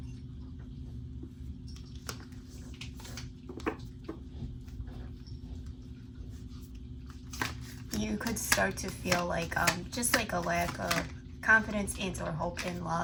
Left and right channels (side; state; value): both; identical; correlation 1.00